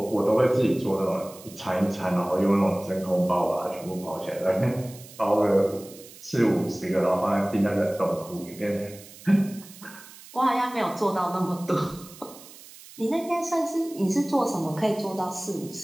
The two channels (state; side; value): noise; right; hiss, 19 dB below the sound